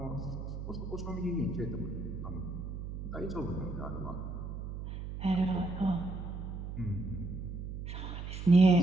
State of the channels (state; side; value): noise; right; hum, 6 dB below the sound